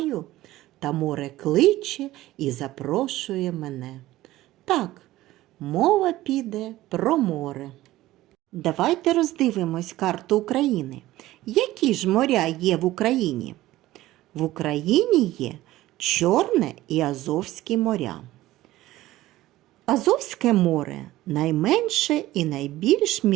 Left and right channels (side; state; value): left; quieter; 16.2 dB